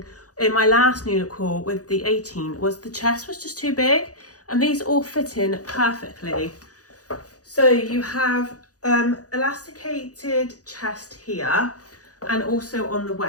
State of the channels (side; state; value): right; late; 0.67 ms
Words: in my last New Look haul with the 18 was the chest was just too big, and these all fit in perfectly. So you have elasticated chest here and also on the